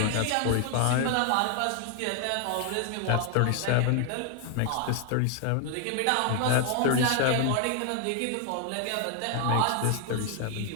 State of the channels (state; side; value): different; both; correlation 0.00